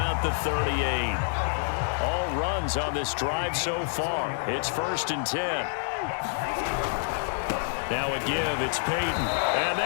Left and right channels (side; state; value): right; silent; digital silence